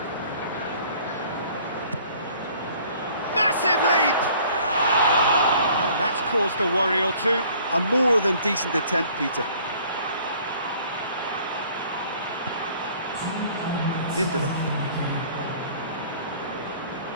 Massive leap! And that's caused a worry or two. A more than decent attempt, Peter. Lindelof.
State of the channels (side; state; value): both; inverted; correlation -0.54